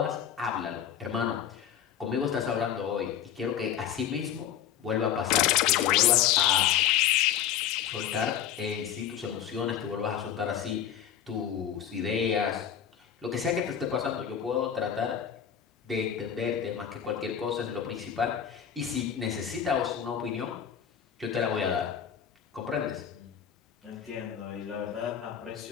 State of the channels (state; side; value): quieter; right; 9.3 dB